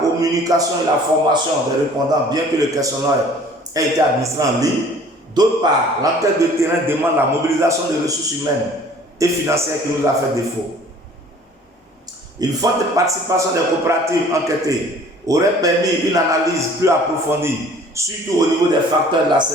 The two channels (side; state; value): both; normal; correlation 0.51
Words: communication et la formation des répondants bien que le questionnaire ait été administré en ligne. D'autre part, l'enquête de terrain demande la mobilisation des ressources humaines et financières qui nous a fait défaut. Une forte participation des coopératives enquêtées aurait permis une analyse plus approfondie, surtout au niveau des facteurs de la